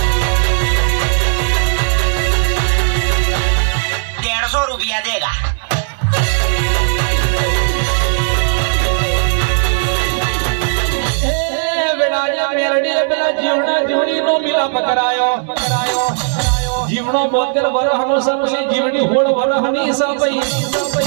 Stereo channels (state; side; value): silent; left; 69 dB below the other